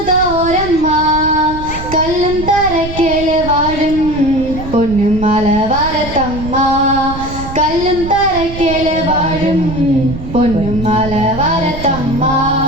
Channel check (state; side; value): noise; right; rumble, 10 dB below the sound